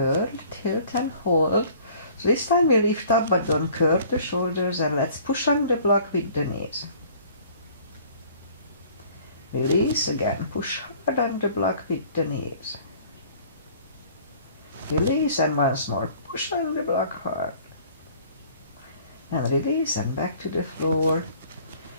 tilt and hold. So this time we lift up but don't curve the shoulders, and let's push on the block with the knees. Release again. Push hard on the block with the knees. Release and once more. Push on the block hard. And release and back to the floor.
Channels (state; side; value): inverted; both; correlation -0.52